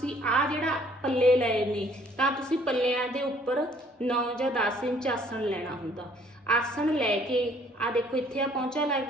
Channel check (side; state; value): both; normal; correlation 0.60